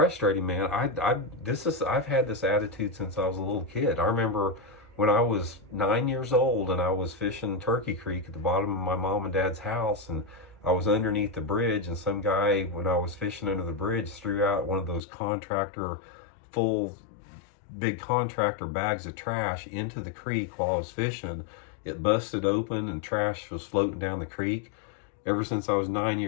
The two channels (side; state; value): right; drops out; at 15.0 s